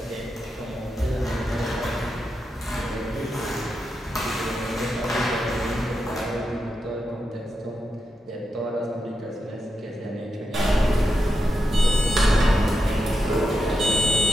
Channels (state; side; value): normal; both; correlation 0.87